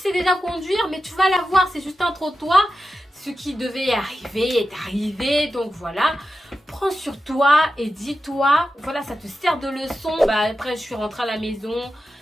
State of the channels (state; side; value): normal; both; correlation 0.91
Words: déjà conduire, mais tu vas la voir. C'est juste un trottoir. Ce qui devait arriver est arrivé. Donc voilà. Prends sur toi et dis-toi. Voilà, ça te sert de leçon. Bah, après, je suis rentrée à la maison.